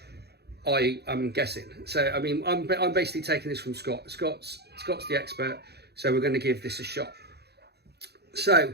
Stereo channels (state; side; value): late; left; 0.48 ms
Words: I'm guessing. So I mean, I'm basically taking this from Scott. Scott's the expert, so we're going to give this a shot.